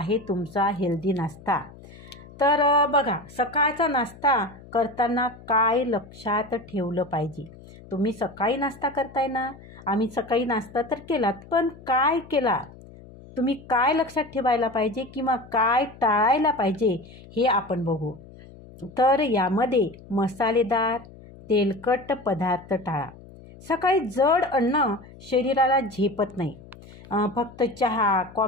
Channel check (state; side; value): noise; left; hum, 20 dB below the sound